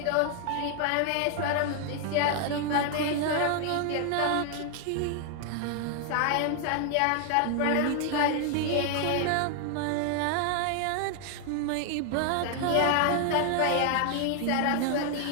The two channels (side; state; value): both; different; correlation 0.00